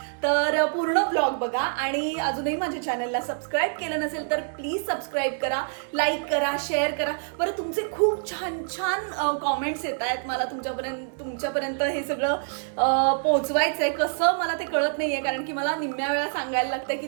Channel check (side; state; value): left; silent; digital silence